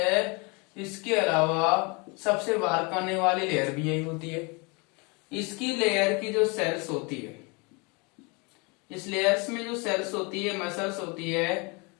इसके अलावा सबसे बाहर आने वाली लेयर भी यही होती है। इसकी लेयर की जो सेल्स होती है, इस लेयर्स में जो सेल्स होती है, मसल्स होती है,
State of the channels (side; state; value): right; quieter; 29.8 dB